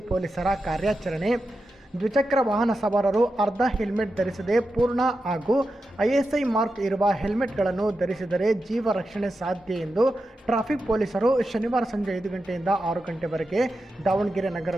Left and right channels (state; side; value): normal; both; correlation 0.89